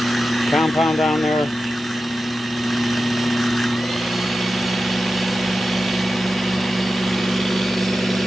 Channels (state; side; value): normal; both; correlation 0.92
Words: compound down there.